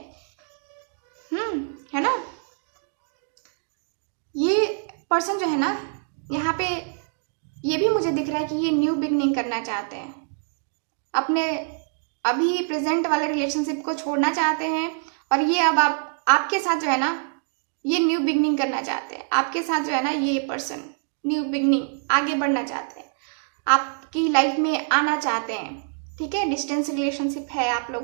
है ना। ये पर्सन जो है ना यहाँ पे ये भी मुझे दिख रहा है कि ये न्यू बिगनिंग करना चाहते हैं, अपने अभी प्रेजेंट वाले रिलेशनशिप को छोड़ना चाहते हैं, और ये अब आपके साथ जो है ना ये न्यू बिगनिंग करना चाहते हैं। आपके साथ जो है ना ये पर्सन न्यू बिगनिंग, आगे बढ़ना चाहते हैं, आपकी लाइफ में आना चाहते हैं, ठीक है। डिस्टेंस रिलेशनशिप है आप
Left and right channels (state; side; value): silent; left; 62 dB below the other